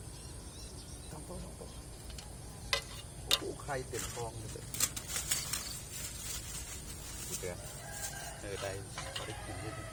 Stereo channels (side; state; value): both; identical; correlation 1.00